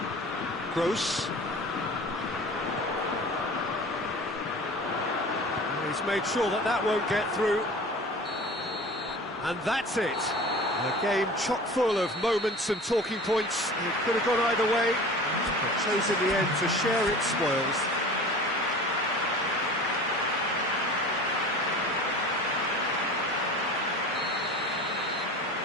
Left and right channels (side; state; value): both; normal; correlation 0.39